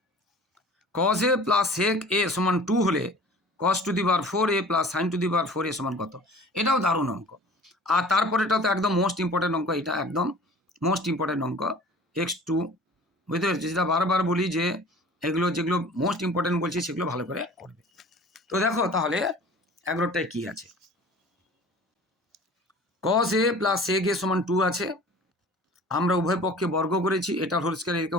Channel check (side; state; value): both; normal; correlation 0.44